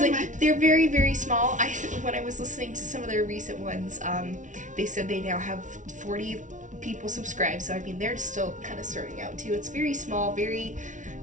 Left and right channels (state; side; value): late; left; 0.37 ms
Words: like, they're very, very small. When I was listening to some of their recent ones, they said they now have 40 people subscribed, so I mean they're still kind of starting out too. It's very small, very,